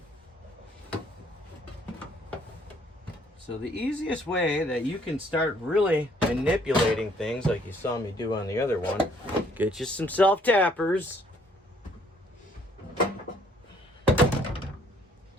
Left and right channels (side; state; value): both; normal; correlation 0.63